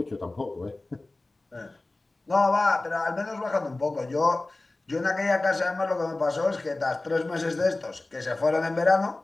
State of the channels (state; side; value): quieter; right; 3.0 dB